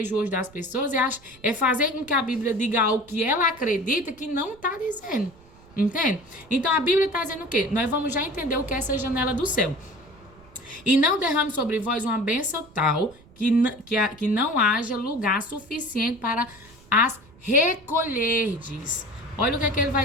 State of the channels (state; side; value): noise; right; rumble, 25 dB below the sound